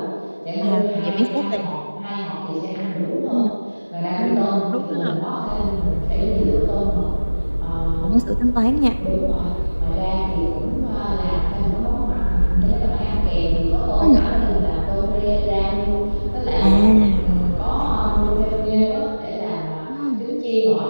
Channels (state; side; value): inverted; both; correlation -1.00